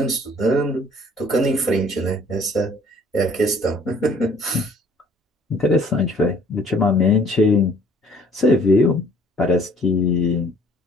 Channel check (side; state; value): both; normal; correlation 0.57